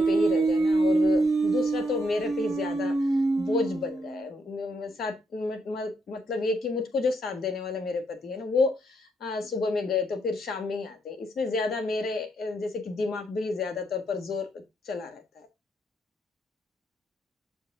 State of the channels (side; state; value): both; normal; correlation 0.77